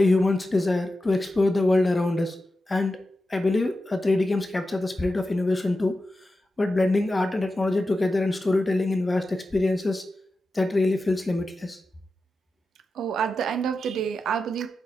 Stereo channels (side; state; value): both; normal; correlation 0.91